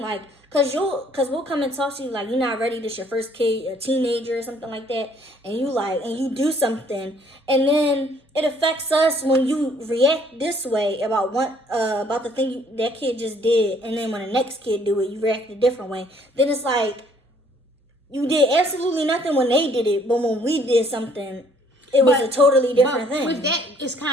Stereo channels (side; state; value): both; normal; correlation 0.61